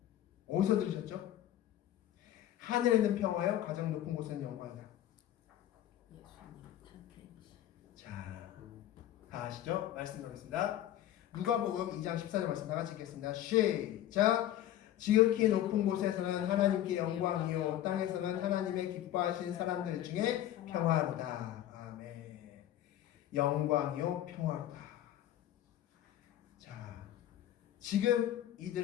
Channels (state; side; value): quieter; right; 12.5 dB